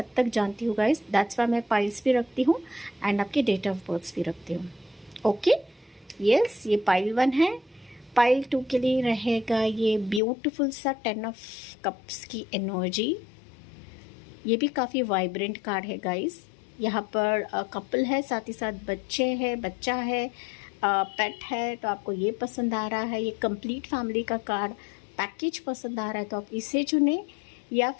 तक जानती हूँ गाइस। दैट्स वाई मैं पाइल्स भी रखती हूँ एंड आपके डेट ऑफ बर्थ भी रखती हूँ। ओके, यस, ये पाइल 1 है। पाइल 2 के लिए रहेगा ये ब्यूटीफुल सा 10 ऑफ कप्स की एनर्जी। ये भी काफ़ी वाइब्रेंट कार्ड है गाइस। यहाँ पर कपल है, साथ ही साथ बच्चा है, पेट है, तो आपको ये पसंद आ रहा है। ये कंप्लीट फैमिली का कार्ड पैकेज पसंद आ रहा है, तो आप इसे चुने या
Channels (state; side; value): drops out; right; at 10.2 s